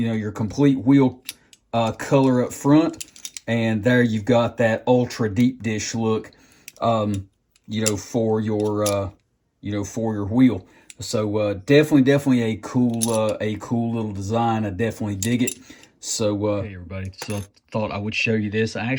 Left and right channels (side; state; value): both; identical; correlation 1.00